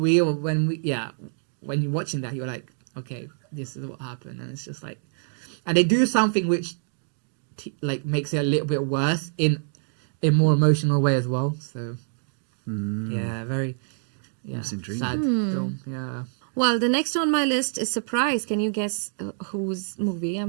you're watching that, you're like, okay, this is what happened, and it's just like, and they do something which makes it a little bit worse in a more emotional way as well. So very sad film. Yeah. Well, the next on my list is surprise. Can you guess whose movie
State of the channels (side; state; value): left; silent; digital silence